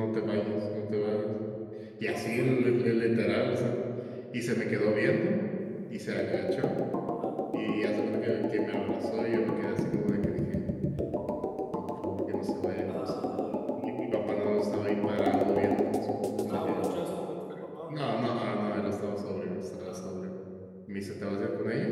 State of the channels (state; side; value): identical; both; correlation 1.00